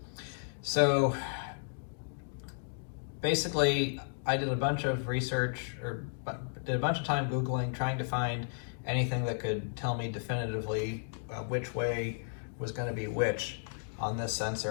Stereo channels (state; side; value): silent; right; digital silence